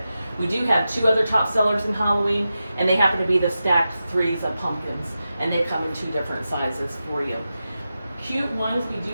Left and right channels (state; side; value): inverted; both; correlation -0.91